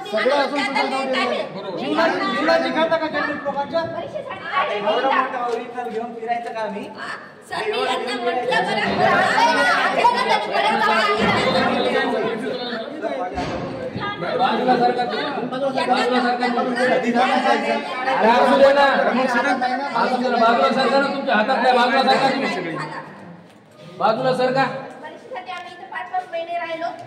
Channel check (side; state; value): both; identical; correlation 1.00